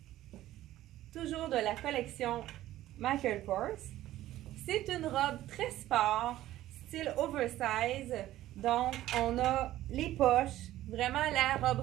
Toujours de la collection Michael Kors. C'est une robe très sport, style oversize. Donc, on a les poches, vraiment la robe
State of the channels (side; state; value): left; quieter; 14.4 dB